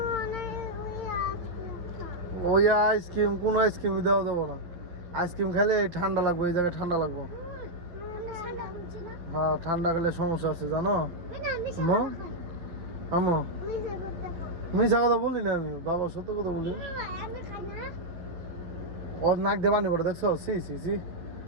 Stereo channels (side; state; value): left; late; 11 ms